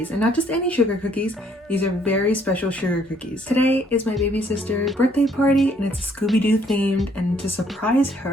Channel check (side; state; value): both; normal; correlation 0.65